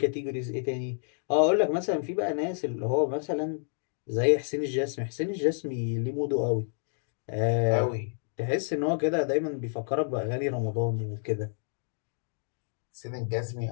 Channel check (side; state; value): right; silent; digital silence